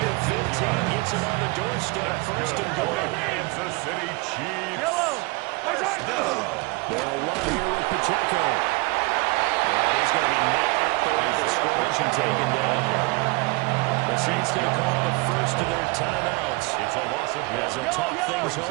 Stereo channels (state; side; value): quieter; left; 26.1 dB